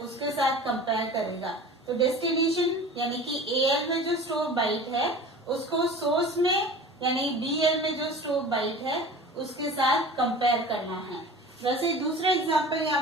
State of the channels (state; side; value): normal; both; correlation 0.39